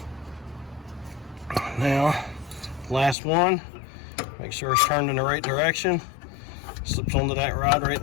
Now, last one, make sure it's turned in the right direction. Slips onto that rod right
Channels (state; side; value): drops out; right; at 3.2 s